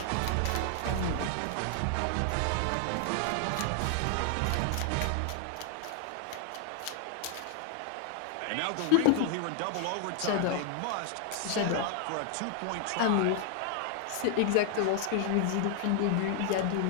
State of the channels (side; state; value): both; different; correlation 0.00